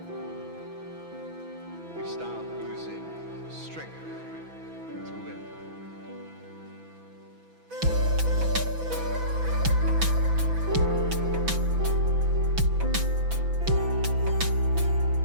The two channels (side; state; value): left; late; 6.0 ms